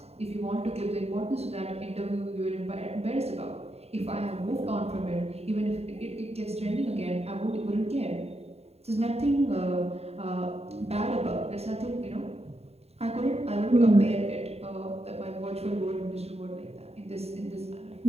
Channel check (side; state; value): left; late; 0.30 ms